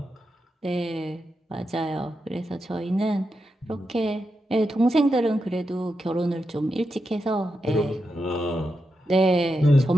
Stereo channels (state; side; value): normal; both; correlation 0.87